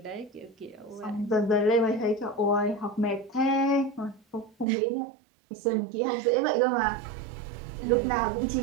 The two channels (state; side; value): drops out; left; at 4.7 s